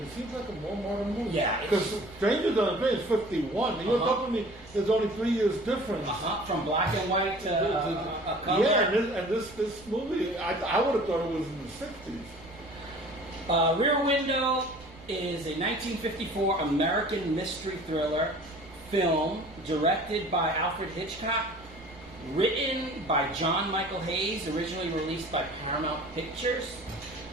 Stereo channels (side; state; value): right; noise; rumble, 22 dB below the sound